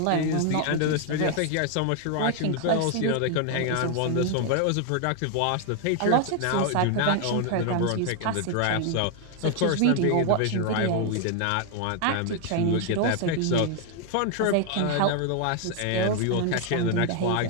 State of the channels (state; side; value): different; both; correlation 0.00